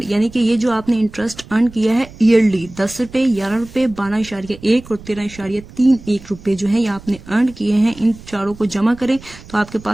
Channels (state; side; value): noise; right; rumble, 19 dB below the sound